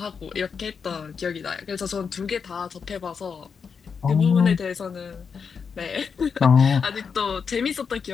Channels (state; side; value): quieter; right; 6.1 dB